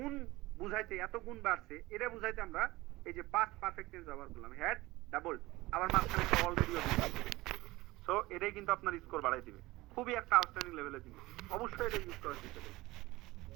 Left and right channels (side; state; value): left; quieter; 19.7 dB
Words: বুঝাইতে, এত গুণ বাড়ছে এটা বুঝাইতে আমরা এই যে পাস্ট পারফেক্ট টেন্স ব্যবহার করলাম, হ্যাড ডাবলড, আবার মাঝখানে একটা অলরেডি। সো এটাই কিন্তু আপনার স্কোর বাড়াই দিবে, খুবই একটা আউটস্ট্যান্ডিং লেভেলের জিনিস, অবশ্যই এটা ইউজ করার চেষ্টা করবেন